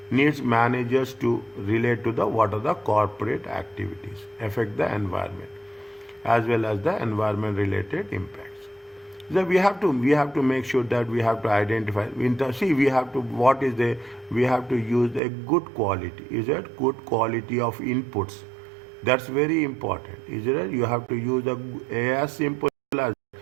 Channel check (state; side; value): drops out; left; at 15.2 s